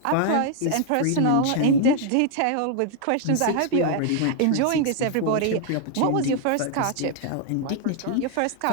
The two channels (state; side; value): different; both; correlation 0.00